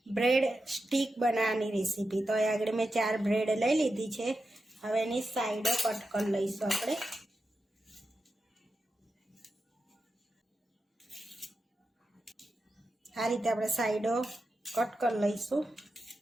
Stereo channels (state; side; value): normal; both; correlation 0.90